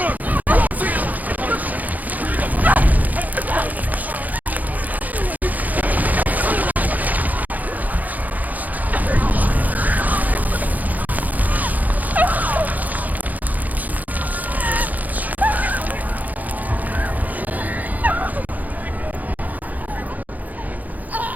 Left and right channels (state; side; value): late; left; 0.080 ms